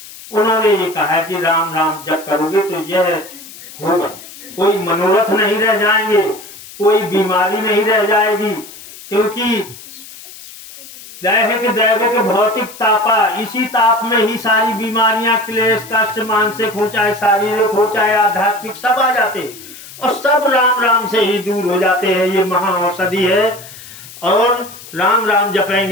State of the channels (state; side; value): noise; left; hiss, 17 dB below the sound